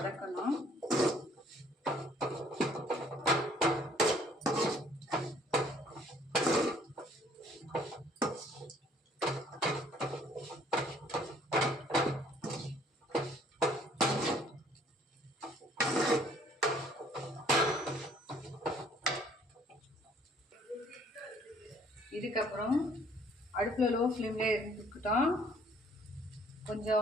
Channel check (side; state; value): both; normal; correlation 0.60